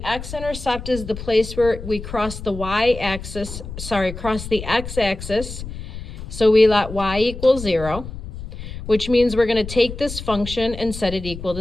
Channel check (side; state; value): left; noise; rumble, 10 dB below the sound